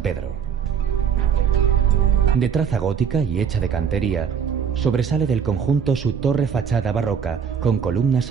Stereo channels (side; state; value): left; quieter; 7.3 dB